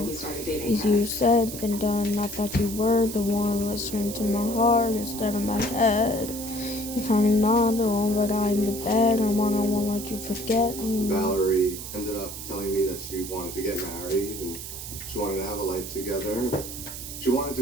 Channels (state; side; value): noise; right; hiss, 9 dB below the sound